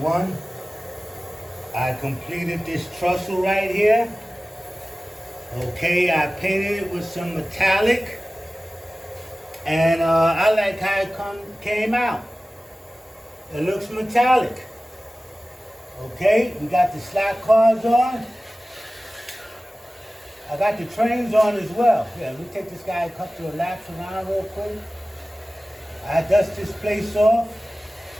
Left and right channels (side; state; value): both; normal; correlation 0.97